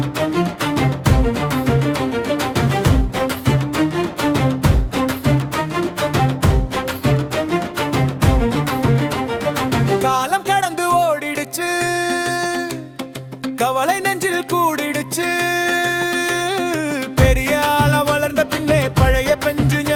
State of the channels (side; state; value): both; identical; correlation 1.00